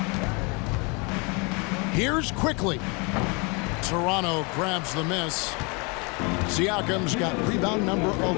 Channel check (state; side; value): quieter; right; 30.6 dB